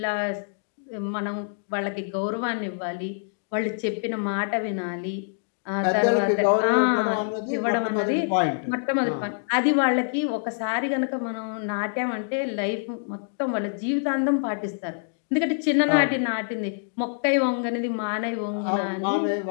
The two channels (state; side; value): silent; right; digital silence